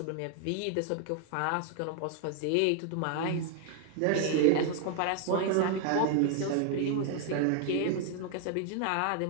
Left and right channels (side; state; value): both; different; correlation 0.00